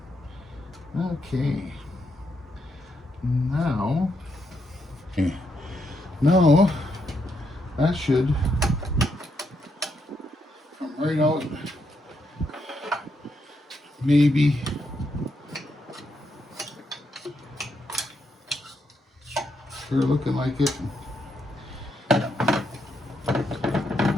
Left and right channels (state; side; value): normal; both; correlation 0.79